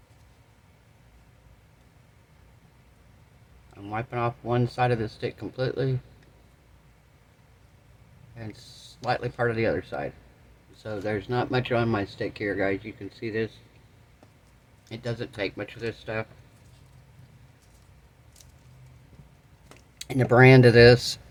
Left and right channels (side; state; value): both; identical; correlation 1.00